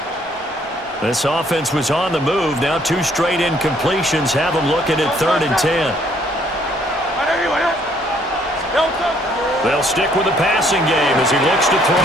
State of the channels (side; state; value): both; normal; correlation 0.65